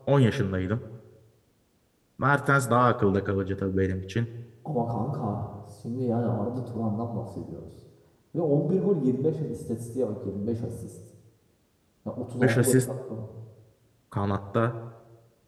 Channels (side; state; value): both; identical; correlation 1.00